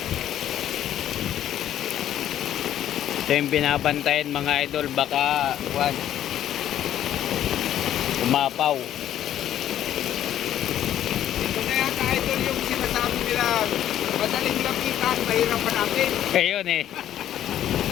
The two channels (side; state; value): right; quieter; 11.4 dB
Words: Ito yung binabantayan mga idol. Baka umapaw. Ito na yata idol yung sinasabi nila. Madaling lapitan, mahirap hanapin. Ayun eh.